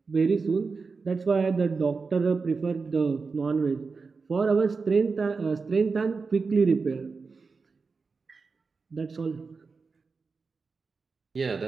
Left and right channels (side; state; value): left; quieter; 4.6 dB